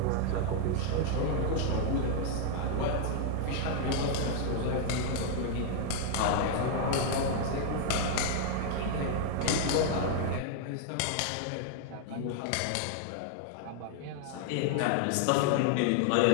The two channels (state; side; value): different; both; correlation 0.00